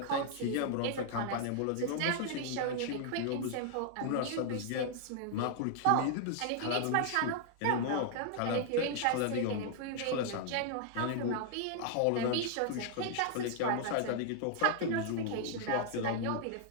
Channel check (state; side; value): different; both; correlation 0.00